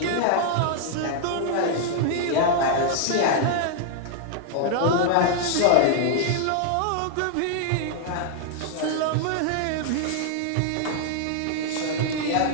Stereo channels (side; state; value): both; different; correlation -0.01